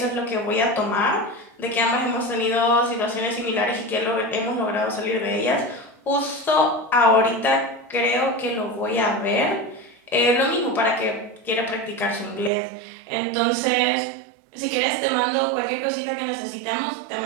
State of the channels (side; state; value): left; drops out; at 12.5 s